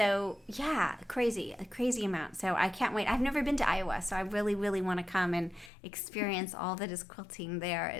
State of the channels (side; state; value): right; drops out; at 5.7 s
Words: yeah, a crazy amount. So I can't wait. I've never been to Iowa, so I really, really want to come and experience all that is quilting